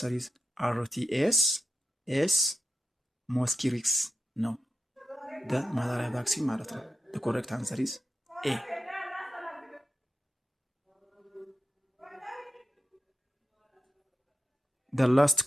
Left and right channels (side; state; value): both; normal; correlation 0.88